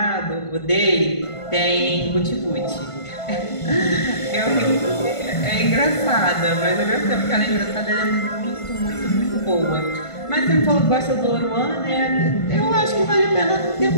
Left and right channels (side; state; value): right; late; 1.5 ms